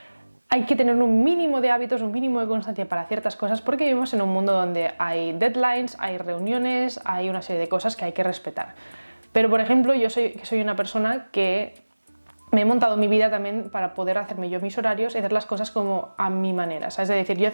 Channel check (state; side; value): inverted; both; correlation -1.00